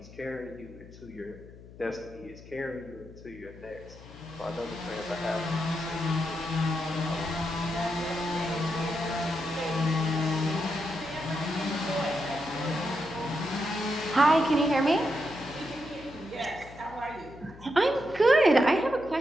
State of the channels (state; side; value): noise; left; hum, 18 dB below the sound